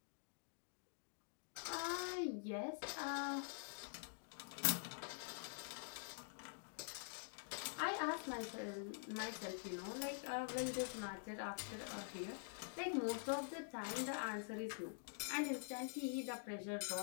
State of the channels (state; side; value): silent; right; digital silence